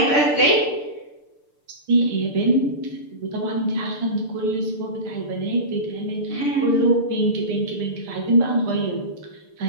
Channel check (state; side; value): late; right; 6.8 ms